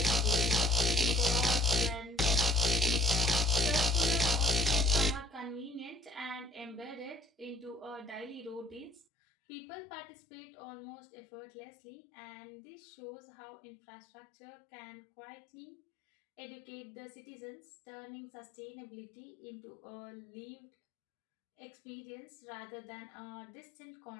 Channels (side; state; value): right; drops out; at 9.1 s